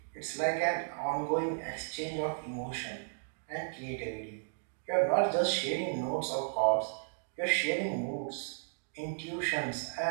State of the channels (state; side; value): silent; left; digital silence